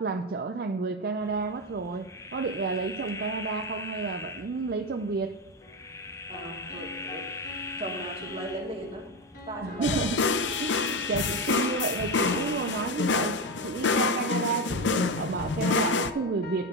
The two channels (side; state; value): both; normal; correlation 0.15